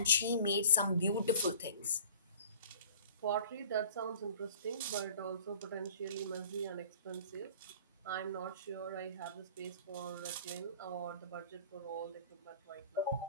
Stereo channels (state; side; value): inverted; both; correlation -0.48